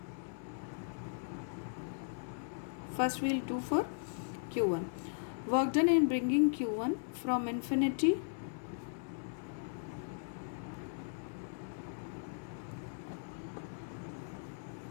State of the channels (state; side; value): silent; right; 53 dB below the other